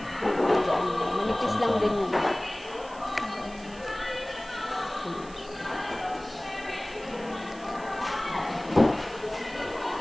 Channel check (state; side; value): noise; right; hiss, 22 dB below the sound